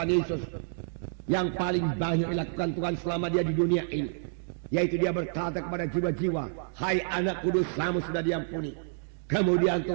Yesus yang paling banyak dilakukan Tuhan selama dia di dunia ini, yaitu dia berkata kepada jiwa-jiwa, hai anakku, dosamu sudah diampuni. Kemudian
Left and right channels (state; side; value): silent; left; digital silence